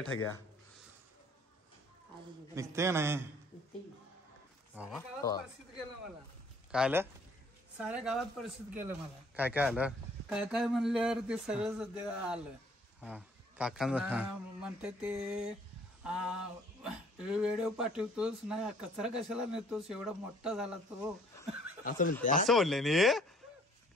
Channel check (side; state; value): both; normal; correlation 0.59